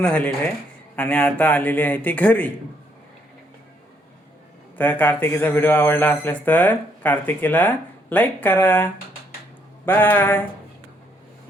झालेली आहे आणि आता आलेली आहे ती घरी. तर कार्तिकीचा व्हिडिओ आवडला असल्यास तर कार्तिकीला लाईक करा. बाय.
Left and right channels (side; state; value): both; normal; correlation 0.71